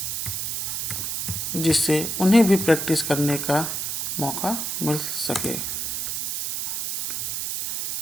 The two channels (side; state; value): right; noise; hiss, 2 dB below the sound